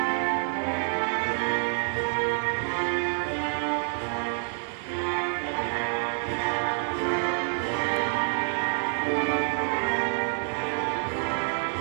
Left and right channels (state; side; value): silent; left; 60 dB below the other